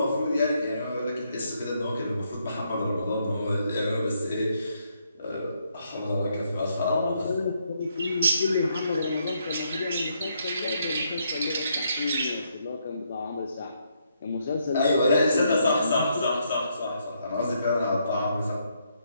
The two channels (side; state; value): both; inverted; correlation -0.75